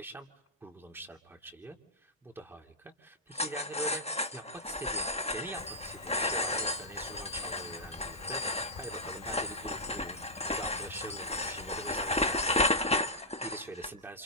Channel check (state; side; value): normal; both; correlation -0.11